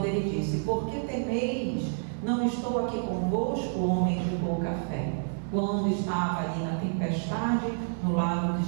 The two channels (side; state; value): left; silent; 59 dB below the other